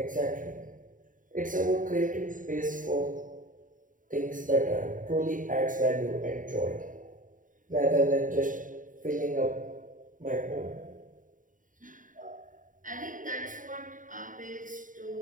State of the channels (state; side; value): late; left; 0.38 ms